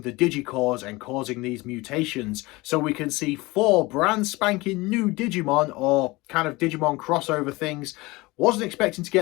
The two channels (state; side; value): quieter; right; 22.2 dB